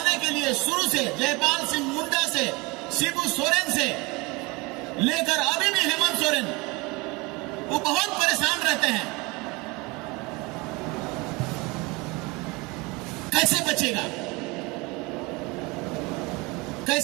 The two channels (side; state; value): left; quieter; 25.4 dB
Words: के लिए शुरू से जयपाल सिंह मुंडा से, शिबू सोरेन से लेकर अभी भी हेमंत सोरेन, वो बहुत परेशान रहते हैं। कैसे बचेगा,